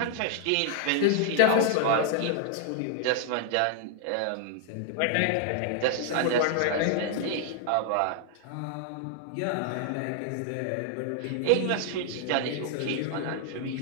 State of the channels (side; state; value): both; different; correlation 0.00